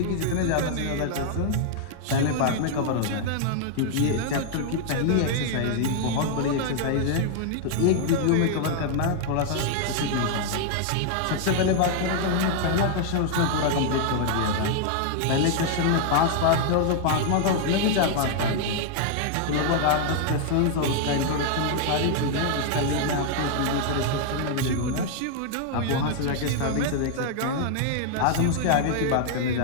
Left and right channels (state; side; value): different; both; correlation 0.00